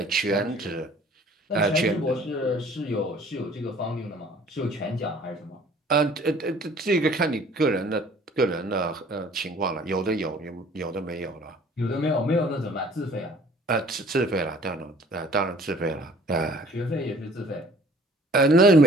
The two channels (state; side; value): normal; both; correlation 0.53